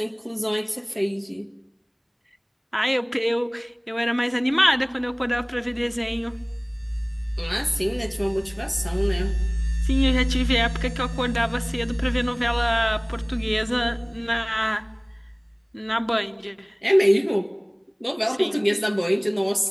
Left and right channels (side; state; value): both; identical; correlation 1.00